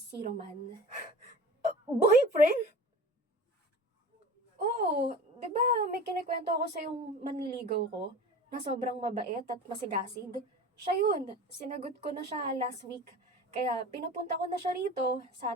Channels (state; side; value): normal; both; correlation 0.38